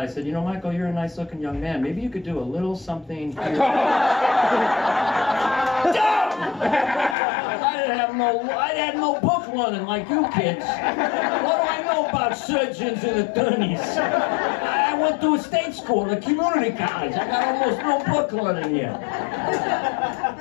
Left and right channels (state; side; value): drops out; right; at 7.2 s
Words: I said, you know, Michael, you're a nice looking young man. Maybe you could do a little something here. I had no book learning like you kids. What do I know about surgeons and attorneys? I went to a state school, a community college. I got almost no book learning here.